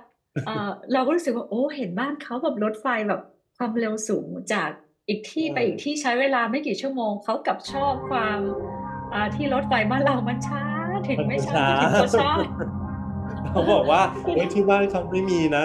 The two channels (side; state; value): both; identical; correlation 1.00